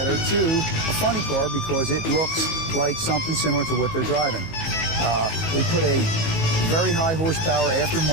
to a funny car because it looks like something similar to what they're driving. We put a very high horsepower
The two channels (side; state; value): right; late; 19 ms